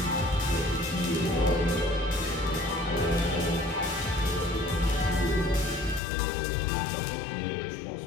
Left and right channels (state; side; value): drops out; right; at 6.0 s